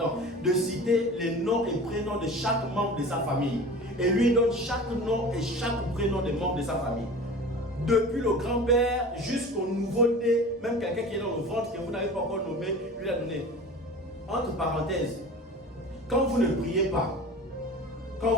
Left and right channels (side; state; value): both; normal; correlation 0.37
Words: de citer les noms et prénoms de chaque membre de sa famille. Et lui donne chaque nom et chaque prénom des membres de sa famille. Depuis le grand-père jusqu'au nouveau-né, même quelqu'un qui est dans le ventre que vous n'avez pas encore nommé, lui a donné. Entre parenthèses, quand vous ne priez pas,